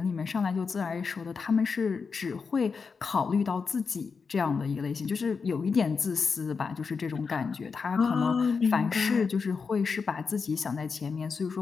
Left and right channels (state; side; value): quieter; right; 5.2 dB